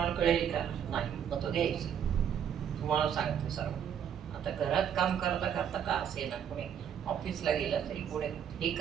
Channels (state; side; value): quieter; left; 8.7 dB